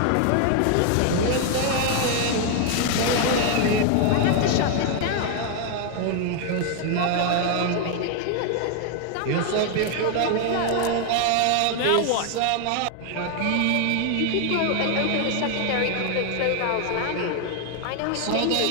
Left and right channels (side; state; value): both; different; correlation 0.00